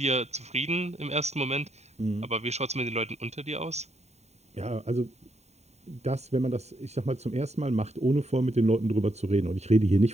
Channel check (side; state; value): left; late; 0.32 ms